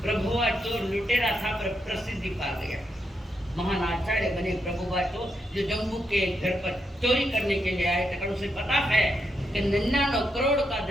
प्रभुआ चोर लुटेरा था पर प्रसिद्धि पा गया, महान आचार्य बने प्रभुआ चोर, जो जम्मू के घर पर चोरी करने के लिए आए थे। उसे पता है कि 99 करोड़ का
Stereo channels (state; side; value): normal; both; correlation 0.82